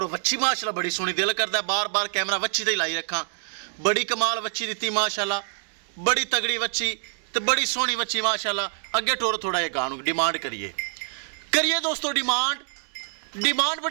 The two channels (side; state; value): left; silent; digital silence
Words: वच्छी माशाल्लाह बड़ी सोहनी, दिल करता है बार बार कैमरा वच्छी ते लाई रखा। बड़ी कमाल वच्छी दी माशाल्लाह, बड़ी तगड़ी वच्छी तो बड़ी सोहनी वच्छी माशाल्लाह। अगे टोर थोड़ा जिहा गां डिमांड करिए दोस्तों। डिमांड